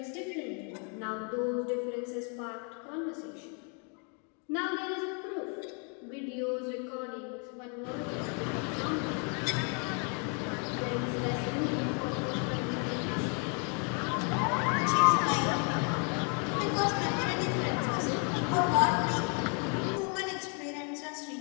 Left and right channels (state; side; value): quieter; right; 38.7 dB